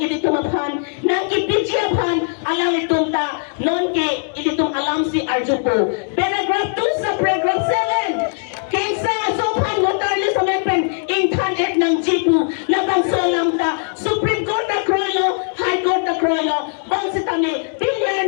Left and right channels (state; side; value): silent; right; 64 dB below the other